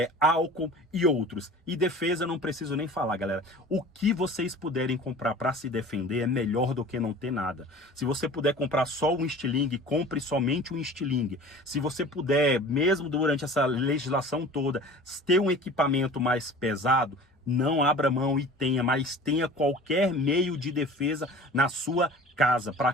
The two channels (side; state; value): both; normal; correlation 0.42